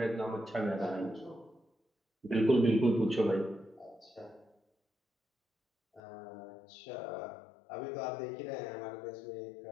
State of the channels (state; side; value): drops out; right; at 6.0 s